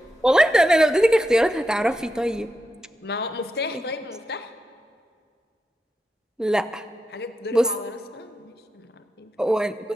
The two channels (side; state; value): both; normal; correlation 0.87